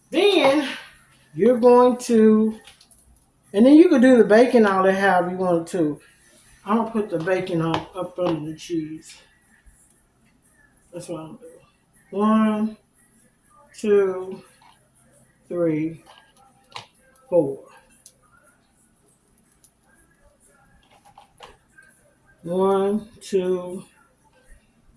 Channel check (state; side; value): identical; both; correlation 1.00